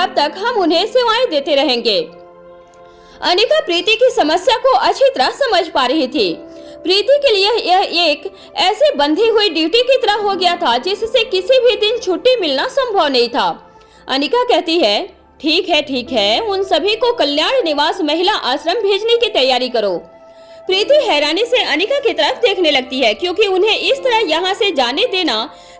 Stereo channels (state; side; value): identical; both; correlation 1.00